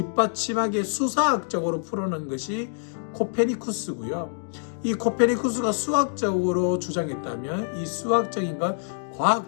수사학적으로 풀어낸 것이 코페니쿠스고요. 이 코페니쿠스가 수학적으로 주장했다면 이 수학적인 걸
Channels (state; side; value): silent; right; digital silence